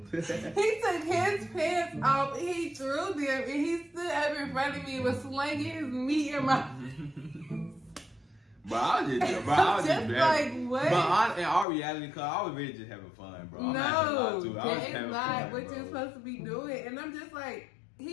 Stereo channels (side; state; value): right; drops out; at 11.7 s